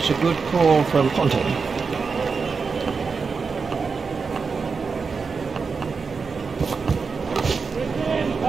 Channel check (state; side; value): quieter; left; 5.1 dB